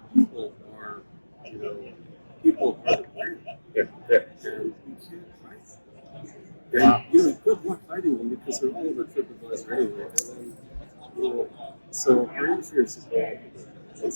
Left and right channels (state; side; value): inverted; both; correlation -1.00